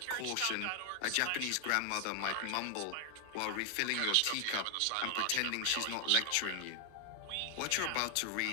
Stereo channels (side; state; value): both; different; correlation 0.00